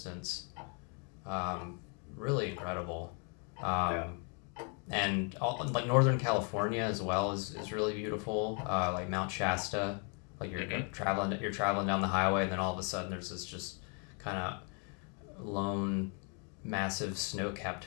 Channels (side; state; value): right; quieter; 38.4 dB